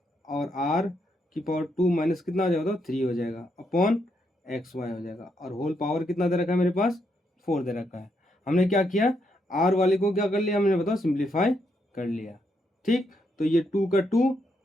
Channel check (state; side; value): normal; both; correlation 0.78